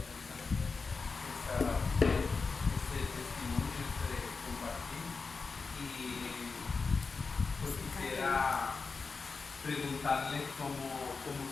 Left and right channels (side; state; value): right; quieter; 4.5 dB